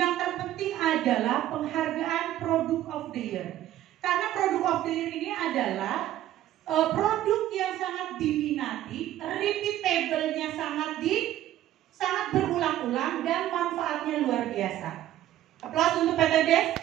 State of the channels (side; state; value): left; quieter; 13.1 dB